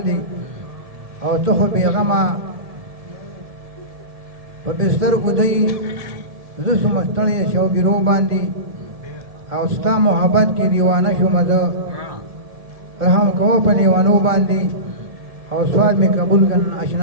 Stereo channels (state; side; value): late; left; 1.7 ms